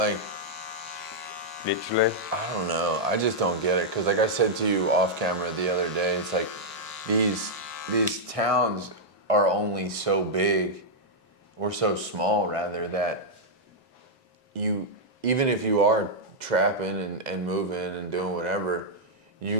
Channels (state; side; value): normal; both; correlation -0.05